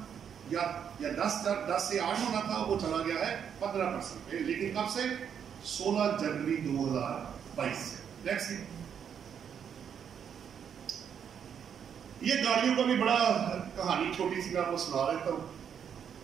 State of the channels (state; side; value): quieter; left; 8.0 dB